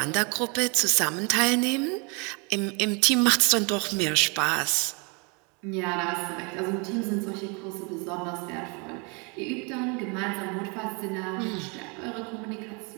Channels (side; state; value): left; quieter; 32.4 dB